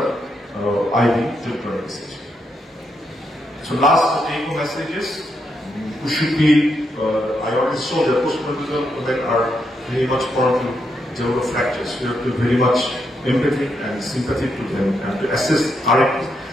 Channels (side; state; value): both; normal; correlation 0.80